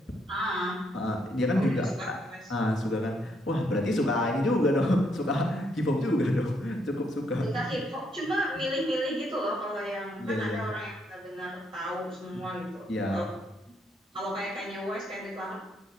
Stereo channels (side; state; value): both; normal; correlation 0.74